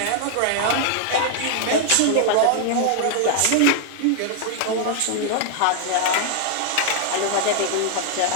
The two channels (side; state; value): both; different; correlation 0.00